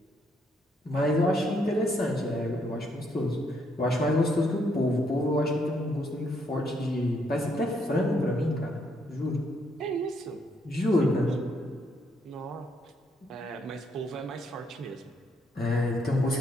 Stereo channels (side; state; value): both; normal; correlation 0.73